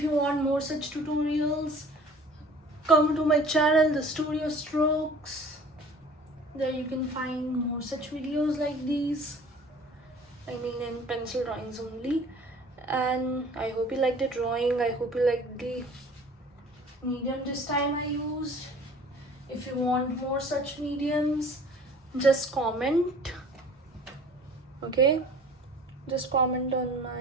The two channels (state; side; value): normal; both; correlation 0.48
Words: you want more such tutorials, come to my channel, the Studio Strokes. There you can find more such videos like these. I mean, in pencil drawings only. And I hope you liked the drawing. I hope you liked the medium this time I used. If you want more such mediums, just comment. Okay, just comment on